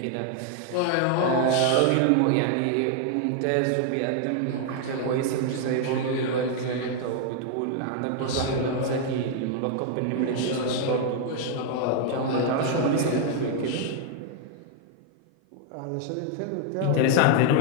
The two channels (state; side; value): different; both; correlation 0.00